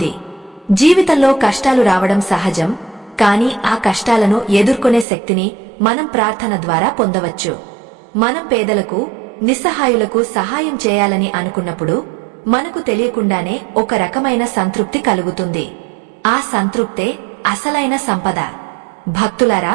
జీవితంలో కష్టాలు రావడం సహజం, కానీ ఆ కష్టాలను ఎదుర్కొనే శక్తిని మనం ప్రార్థన ద్వారా పొందవచ్చు. మనం పేదలకు, నిస్సహాయులకు సహాయం చేయాలని అనుకున్నప్పుడు మనకు తెలియకుండానే ఒక రకమైన సంతృప్తి కలుగుతుంది. ఆ సంతృప్తే అసలైన సంపద. భక్తులారా,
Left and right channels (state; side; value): drops out; left; at 5.1 s